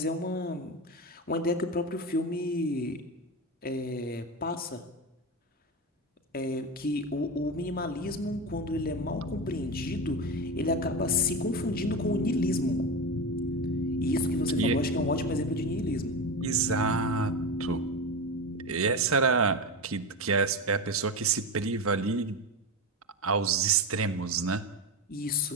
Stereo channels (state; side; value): normal; both; correlation 0.20